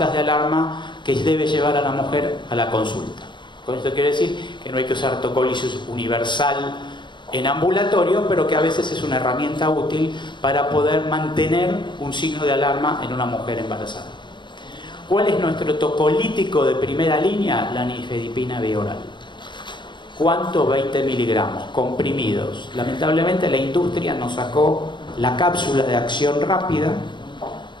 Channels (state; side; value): late; right; 0.23 ms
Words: de alarma que debe llevar a la mujer a la consulta. Con esto quiero decir que no hay que usar tocólisis universal en ambulatorio, pero que a veces es una herramienta útil para poder mantener un signo de alarma en una mujer embarazada. ¿Cuál es nuestro tocolítico de primera línea? La nifedipina bioral. ¿Cuánto? 20 miligramos, comprimidos. Lamentablemente la industria nos sacó la cápsula de acción rápida.